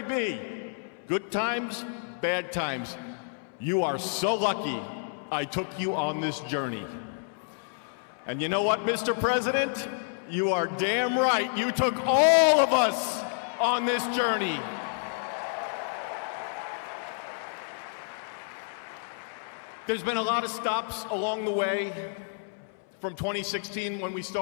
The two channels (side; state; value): right; silent; 58 dB below the other